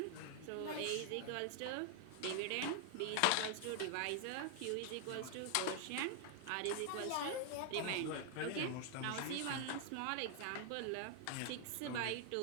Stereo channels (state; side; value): different; both; correlation 0.00